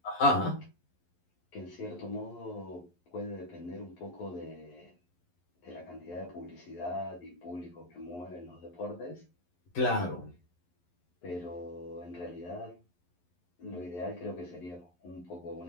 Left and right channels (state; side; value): late; right; 11 ms